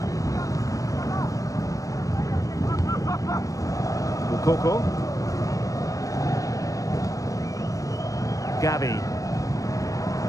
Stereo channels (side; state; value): right; late; 0.16 ms